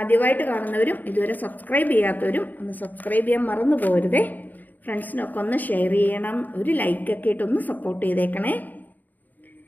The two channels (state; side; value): late; right; 0.084 ms